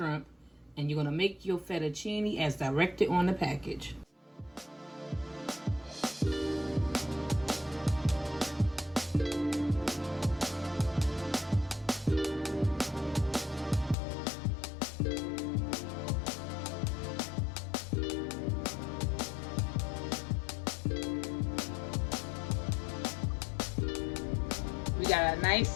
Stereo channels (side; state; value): right; drops out; at 14.0 s